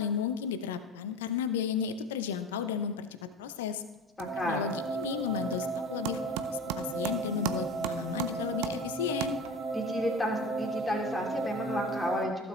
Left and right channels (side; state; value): both; normal; correlation 0.32